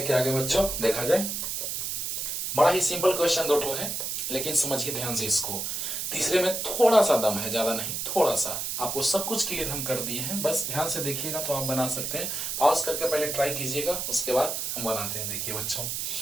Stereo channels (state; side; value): noise; right; hiss, 2 dB below the sound